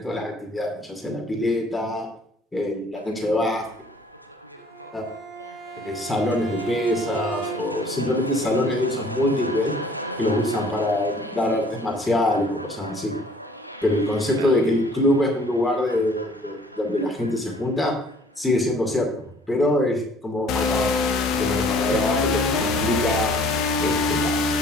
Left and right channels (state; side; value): normal; both; correlation 0.55